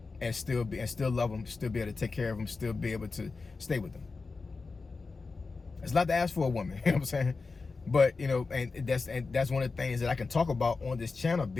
and still love him, still be able to take care of him, still be able to stay with him? It's a lot to ask for a woman, you know what I'm saying? But, you know, and that's one of the things that I can talk about on this channel,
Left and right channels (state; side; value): quieter; right; 4.2 dB